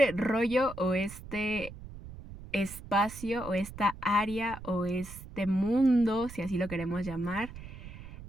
rollo o este espacio o esta área o este mundo, si así lo queremos llamar,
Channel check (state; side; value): noise; right; rumble, 14 dB below the sound